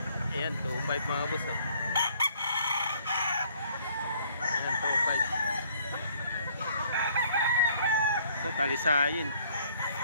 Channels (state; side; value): inverted; both; correlation -0.62